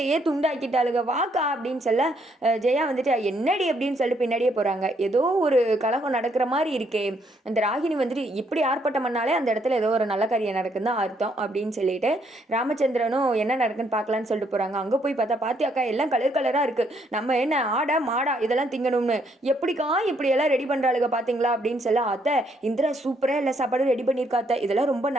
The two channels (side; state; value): both; normal; correlation 0.71